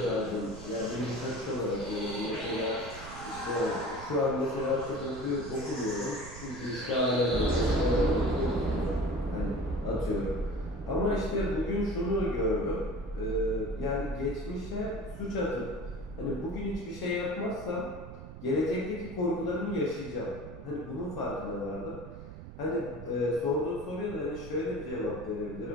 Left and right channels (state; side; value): noise; right; rumble, 12 dB below the sound